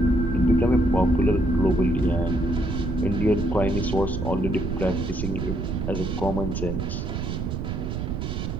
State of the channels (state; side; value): noise; right; rumble, 3 dB below the sound